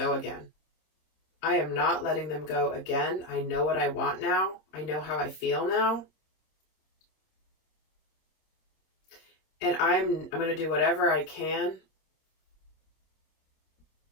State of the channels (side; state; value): right; late; 26 ms